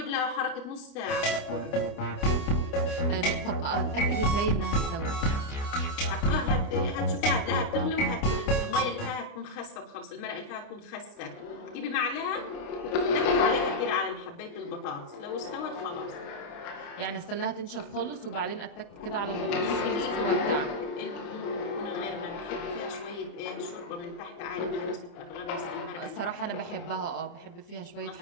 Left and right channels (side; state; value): right; late; 29 ms